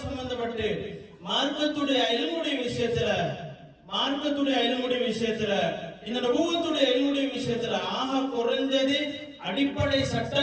சம்பந்தப்பட்டு மார்க்கத்துடைய இல்முடைய விஷயத்துல இந்த நபுவத்துடைய இல்முடைய விஷயத்துல ஆக குறைஞ்சது அடிப்படை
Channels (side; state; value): both; identical; correlation 1.00